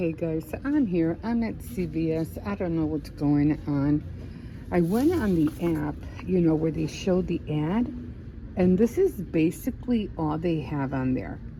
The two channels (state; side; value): identical; both; correlation 1.00